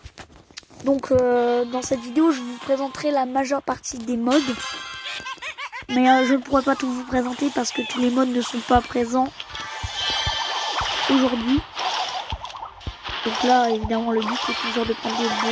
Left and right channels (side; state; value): both; identical; correlation 1.00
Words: Donc dans cette vidéo je vous présenterai la majeure partie des modes. Mais je ne pourrai pas tout vous présenter parce que tous les modes ne sont pas présents aujourd'hui. Donc là, évidemment, le but c'est toujours de prendre des